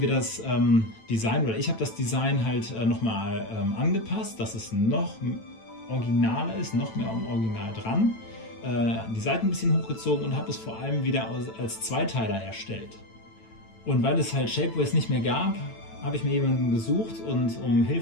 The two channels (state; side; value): late; right; 9.0 ms